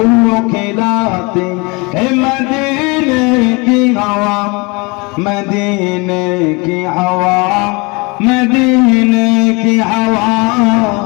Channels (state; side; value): quieter; right; 27.9 dB